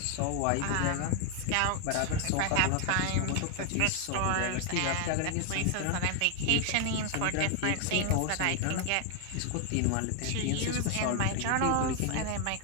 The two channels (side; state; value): both; different; correlation 0.00